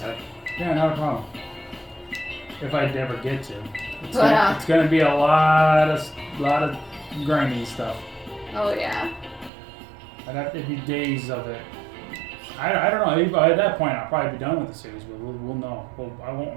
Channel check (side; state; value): left; drops out; at 9.5 s